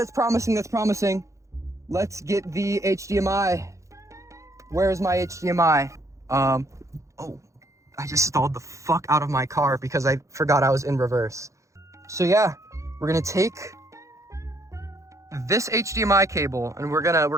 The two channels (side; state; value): left; late; 0.15 ms